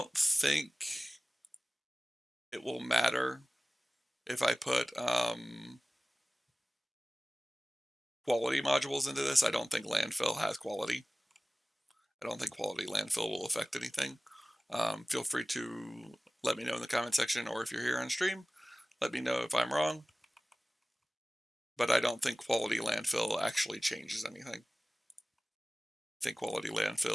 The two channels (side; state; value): both; normal; correlation 0.98